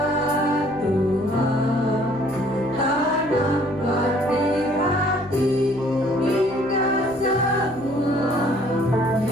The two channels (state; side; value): noise; right; hum, 23 dB below the sound